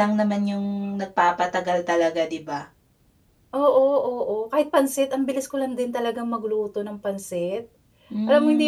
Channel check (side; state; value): both; identical; correlation 1.00